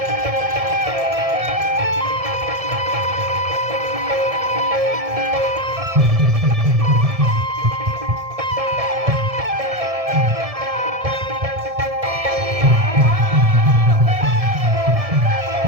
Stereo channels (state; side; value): late; left; 1.7 ms